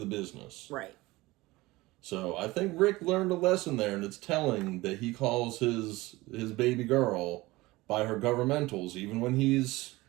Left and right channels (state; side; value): quieter; left; 20.2 dB